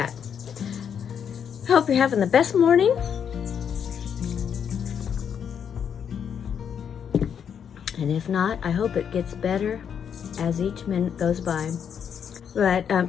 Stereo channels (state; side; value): quieter; right; 7.9 dB